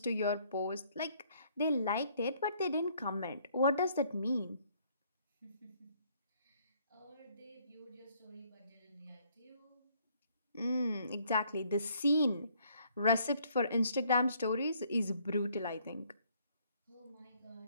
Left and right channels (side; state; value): both; inverted; correlation -0.65